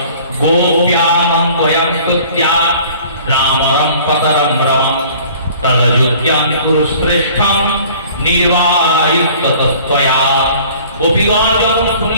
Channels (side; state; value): both; inverted; correlation -0.50